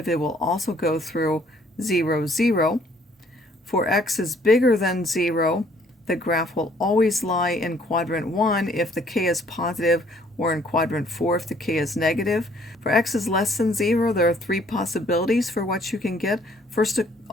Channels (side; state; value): both; normal; correlation 0.62